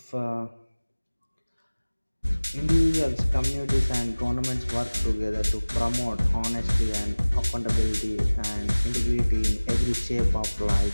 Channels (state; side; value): inverted; both; correlation -1.00